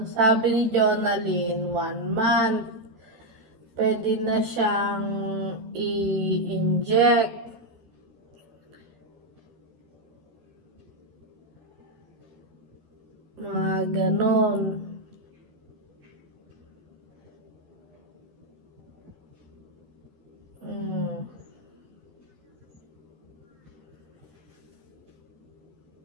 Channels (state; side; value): late; left; 13 ms